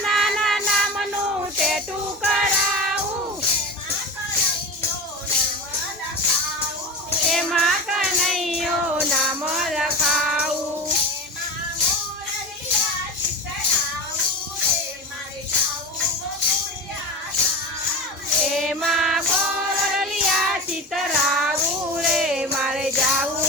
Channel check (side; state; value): both; normal; correlation 0.27